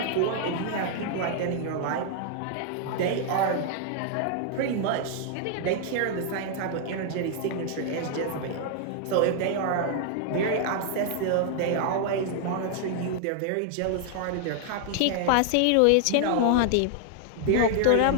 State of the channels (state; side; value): different; both; correlation 0.00